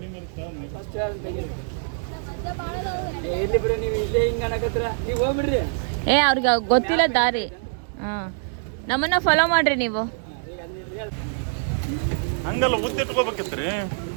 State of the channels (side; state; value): left; silent; digital silence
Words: ಏ ಅವ್ರಿಗೆ ಗೊತ್ತಿಲ್ಲ ದಾರಿ. ಹಾಂ ನಮ್ಮನ್ನ ಫಾಲೋ ಮಾಡ್ರಿ ನೀವು. ಹಂಗಲ್ಲ ಉದ್ದಿಟ್ಕೋಬೇಕಿತ್ರಿ.